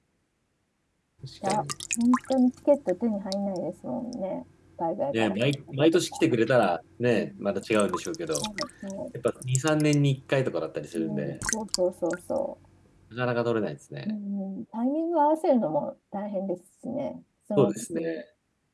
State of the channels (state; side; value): identical; both; correlation 1.00